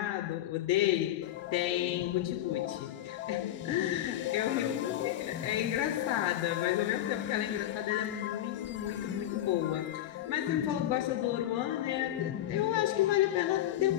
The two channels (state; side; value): quieter; right; 12.7 dB